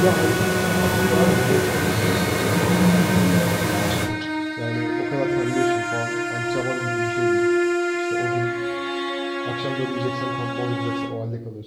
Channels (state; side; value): identical; both; correlation 1.00